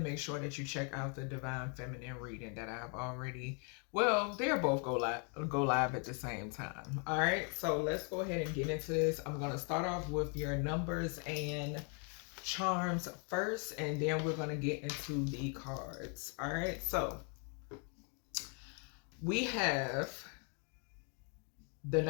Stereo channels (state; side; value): quieter; right; 38.3 dB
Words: make sure that you check out the Divine Feminine reading that I've already, well, they'll both go live at the same time. All right, so let's go ahead and get into this. I'm going to start off with your numbers and charms first, and then we're going to get into the cards. All right, so we have the